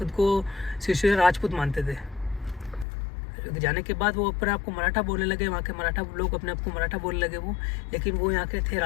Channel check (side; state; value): right; drops out; at 2.9 s